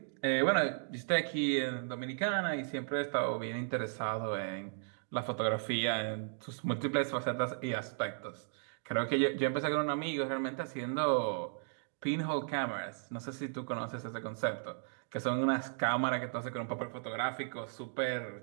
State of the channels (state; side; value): silent; left; digital silence